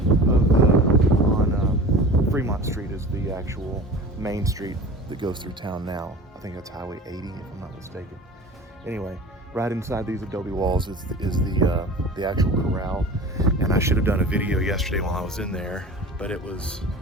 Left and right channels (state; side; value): normal; both; correlation 0.38